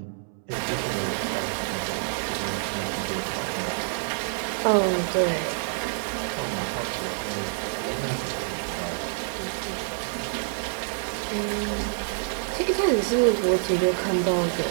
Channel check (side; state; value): left; silent; 60 dB below the other